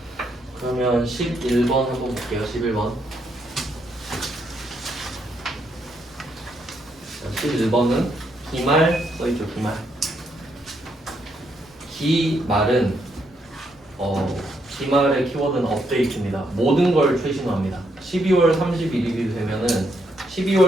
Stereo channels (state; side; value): normal; both; correlation 0.76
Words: 그러면 11번 한번 볼게요. 11번. 11번은 기말 써있죠. 기말. 기말은 기말의 키워드는 업데이트입니다. 모든 걸 최신화합니다. 12월 31일이 되면은